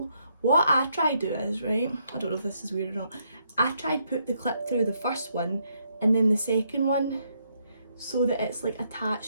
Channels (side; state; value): both; inverted; correlation -0.75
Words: What I try to do is, right, I don't know if this is weird or not, I try to put the clip through the first one and then the second one, so that it's like